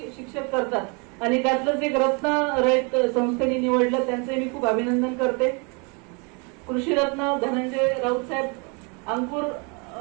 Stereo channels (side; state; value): left; quieter; 32.9 dB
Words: शिक्षक करतात. आणि त्यातलंच एक रत्न रयत संस्थेने निवडलं, त्यांचे मी खूप अभिनंदन करते. कृषी रत्न धनंजय राऊत साहेब,